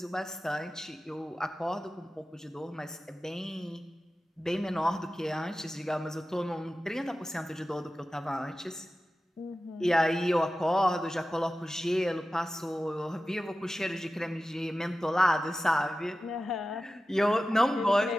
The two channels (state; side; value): normal; both; correlation 0.94